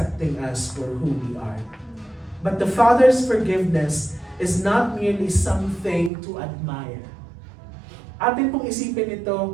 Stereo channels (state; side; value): drops out; left; at 6.1 s